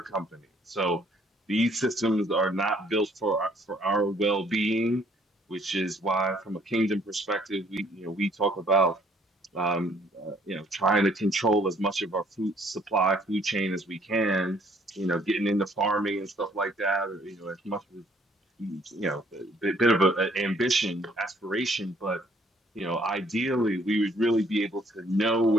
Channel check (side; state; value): both; normal; correlation 0.63